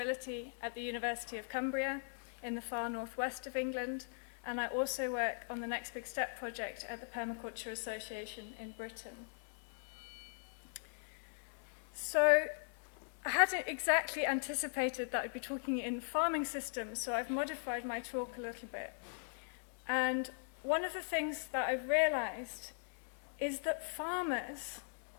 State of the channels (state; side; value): silent; right; digital silence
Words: at the University of Cumbria in the far northwest of England, and I also work on the Next Big Step project at the Permaculture Association in Britain. So I hadn't exactly anticipated that I'd be talking in farming systems, so I've modified my talk a little bit. And one of the things that I've realized is that farmers,